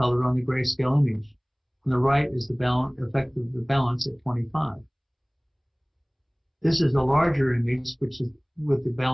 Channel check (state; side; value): identical; both; correlation 1.00